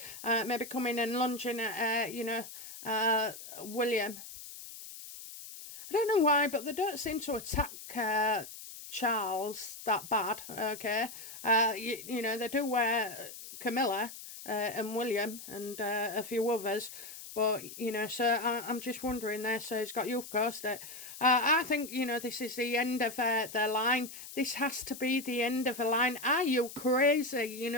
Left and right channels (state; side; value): noise; left; hiss, 13 dB below the sound